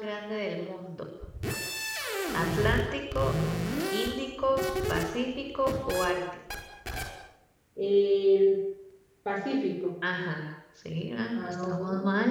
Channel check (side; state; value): both; identical; correlation 1.00